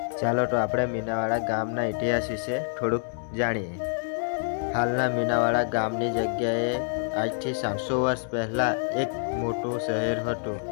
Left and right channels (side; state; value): right; silent; 60 dB below the other